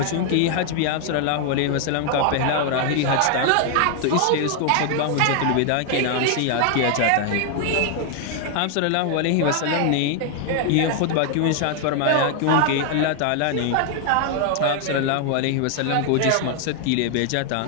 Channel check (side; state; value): both; different; correlation 0.00